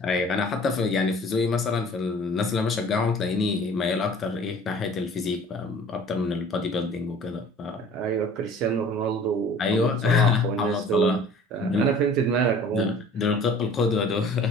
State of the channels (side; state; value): both; normal; correlation 0.48